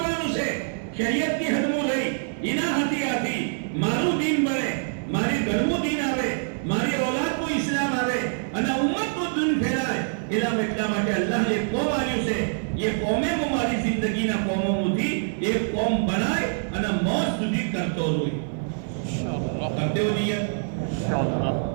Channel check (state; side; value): silent; left; digital silence